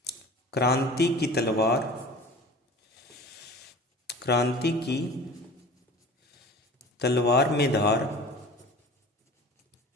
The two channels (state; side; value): normal; both; correlation 0.39